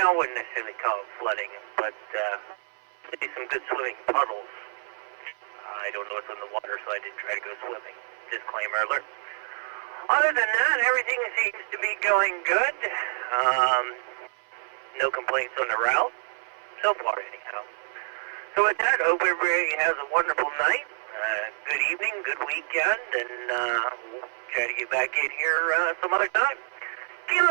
I wouldn't necessarily call it flooding, but some good swimming puddles. I don't know what's on the water, so I didn't try to go swimming. Disclaimer alert. Other than that, everything seems to be going good. No complaints on the route, so far anyhow. So with that, hope everybody has a wonderful night, good evening, good weekend, and we'll try to get back in here some other time.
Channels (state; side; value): silent; left; 60 dB below the other